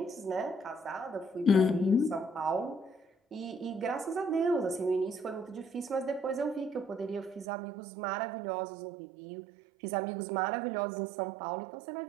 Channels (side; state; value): left; drops out; at 7.5 s